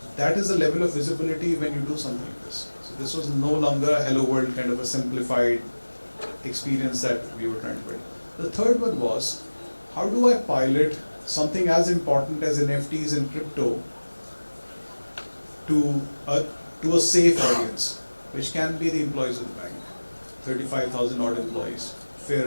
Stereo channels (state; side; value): inverted; both; correlation -1.00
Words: that is the level of visibility when you do something like this. So this was no longer a hello world kind of a simplified experience that we were trying to build. The third one was, how do I pilot something as important as NFTs and crypto to a safe audience, which can be the employees of the bank, 35,000 odd employees, fair